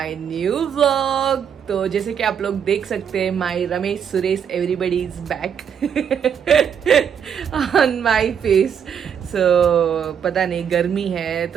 new vlog. तो जैसे कि आप लोग देख सकते हैं, my Ramesh Suresh everybody is back on my face. So पता नहीं, गर्मी है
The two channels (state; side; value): quieter; left; 7.9 dB